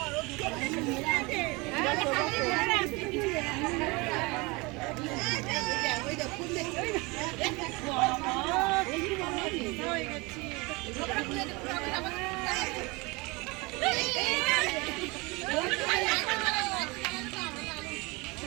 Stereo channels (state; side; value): quieter; left; 25.6 dB